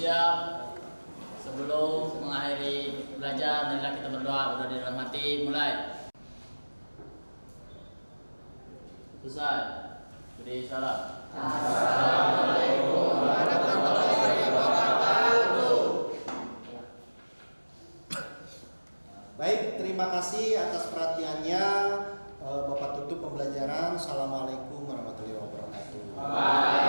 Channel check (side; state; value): both; inverted; correlation -1.00